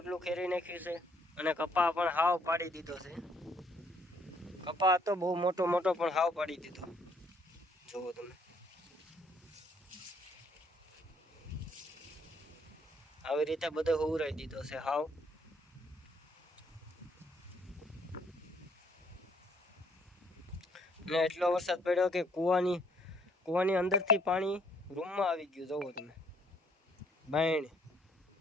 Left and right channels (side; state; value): both; normal; correlation 0.66